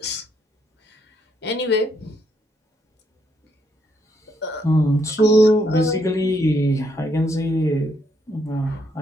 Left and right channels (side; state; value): both; normal; correlation 0.74